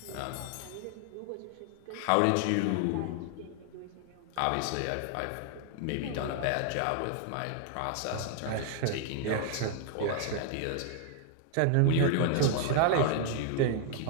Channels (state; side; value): different; both; correlation 0.00